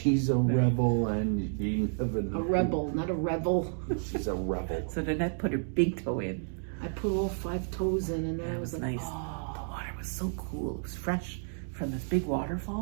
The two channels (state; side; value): silent; left; digital silence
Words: a rebel, and you never A know. rebel, not a rebel. She's a rebel. So Danette put her big toe in. I put all 5 toes in, and then That I was was like, nice. oh, The water was so cool. It was fresh from this big